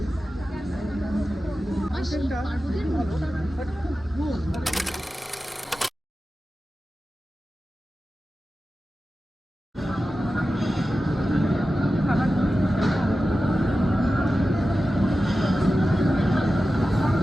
কন্টেন্টটা খুবই ভালো বাট খুব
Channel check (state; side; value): normal; both; correlation 0.94